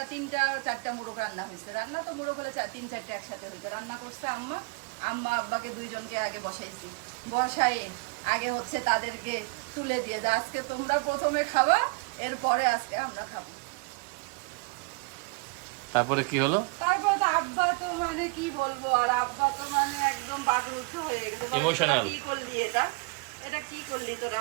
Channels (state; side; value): quieter; left; 29.7 dB